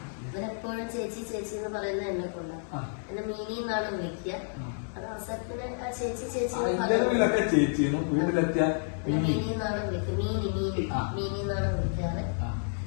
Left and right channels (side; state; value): right; silent; digital silence